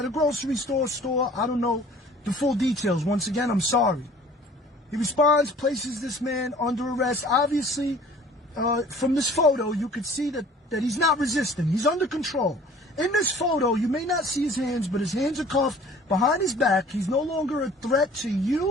a grocery store. I don't know the full details. Once again, I'm sorry. He responds, places this man under arrest. Obviously, from this photo, you could see that he's not resisting. He's under control. In this photo, you may not see his hands, but his hands are cuffed behind his back. He's no longer a threat to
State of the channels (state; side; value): normal; both; correlation 0.50